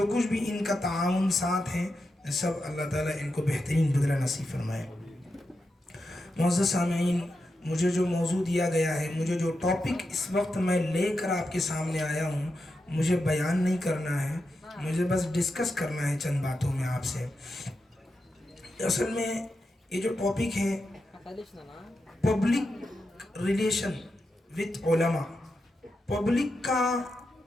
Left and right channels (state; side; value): normal; both; correlation 0.88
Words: کچھ بھی ان کا تعاون ساتھ ہیں، سب اللہ تعالیٰ ان کو بہترین بدلہ نصیب فرمائے۔ معزز سامعین، مجھے جو موضوع دیا گیا ہے، مجھے جو ٹاپک اس وقت میں لے کر آپ کے سامنے آیا ہوں، مجھے بیان نہیں کرنا ہے، مجھے بس ڈسکس کرنا ہے چند باتوں میں آپ سے۔ اصل میں یہ جو ٹاپک ہے پبلک ریلیشن وتھ علماء، پبلک کا